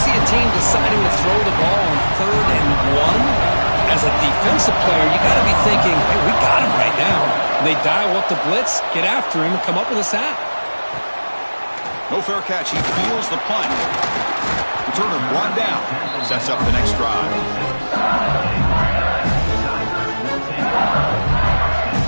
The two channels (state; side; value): inverted; both; correlation -1.00